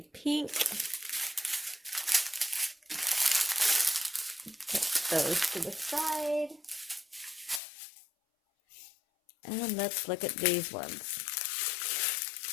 Put those to the side. And let's look at these ones.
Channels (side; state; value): right; drops out; at 7.6 s